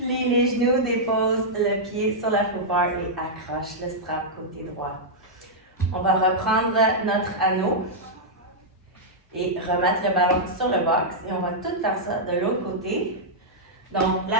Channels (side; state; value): both; normal; correlation -0.08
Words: les genoux, dépose le pied sur la footbar et accroche le strap côté droit. On va reprendre notre anneau et remettre le ballon sur le box. Et on va tout faire ça de l'autre côté. Donc,